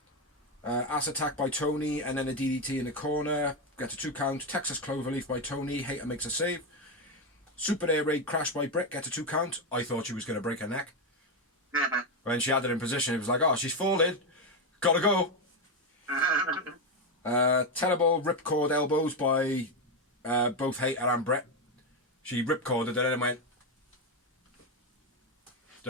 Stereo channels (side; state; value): both; normal; correlation 0.08